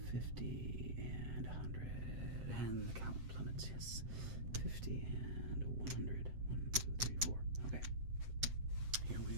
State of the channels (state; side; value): late; left; 7.7 ms